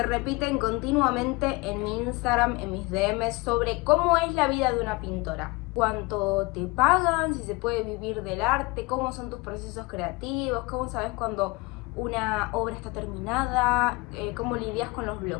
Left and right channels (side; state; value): right; quieter; 24.4 dB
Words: repiten continuamente en mi Instagram, en mis DMs, sobre cómo es la vida de una pintora. ¿Cuánto te pagan? ¿Si se puede vivir del arte? ¿Cómo son tus procesos creativos? ¿Cómo sabes cuando una obra está terminada? ¿Cómo lidias con los